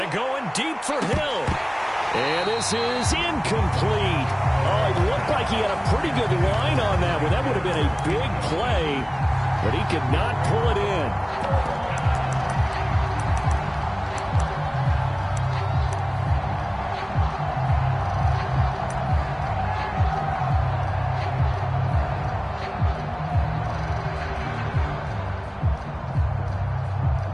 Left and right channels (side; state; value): both; identical; correlation 1.00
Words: going deep for Hill. And this is incomplete. Oh, it looked like he had a pretty good line on that one. That would have been a big play, but he could not pull it in.